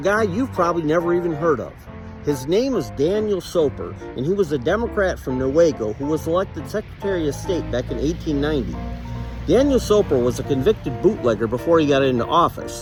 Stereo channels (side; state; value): both; identical; correlation 1.00